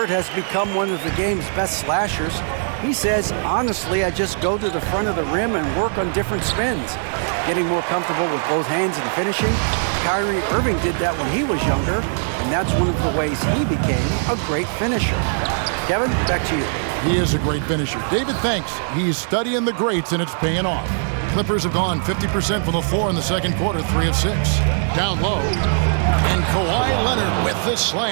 has become one of the game's best slashers. He says, honestly, I just go to the front of the rim and work on different spins. Getting more comfortable with both hands and finishing. Kyrie Irving did that when he was younger, and that's one of the ways he became a great finisher. Kevin, back to you. He is a great finisher. David, thanks. He's studying the greats, and it's paying off. Clippers have gone 50% from the floor in the second quarter, 3 of 6. Down low. And Kawhi Leonard with the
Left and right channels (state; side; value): silent; left; digital silence